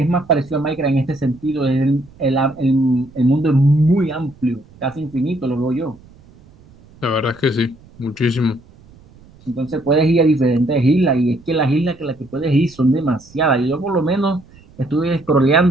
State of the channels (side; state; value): right; noise; rumble, 26 dB below the sound